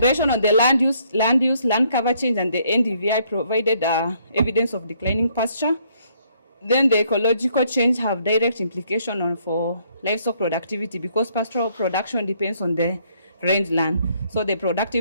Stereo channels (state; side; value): inverted; both; correlation -0.68